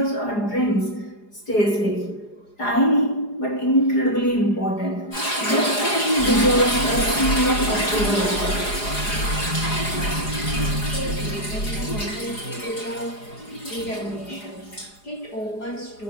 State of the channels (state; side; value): late; right; 4.8 ms